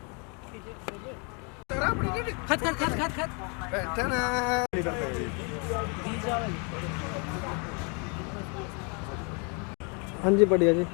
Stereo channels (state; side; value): quieter; right; 35.3 dB